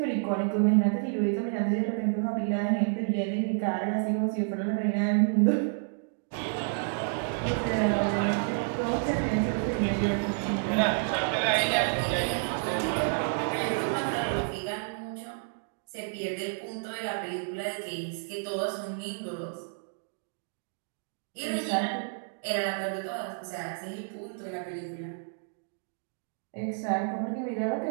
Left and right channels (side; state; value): left; silent; digital silence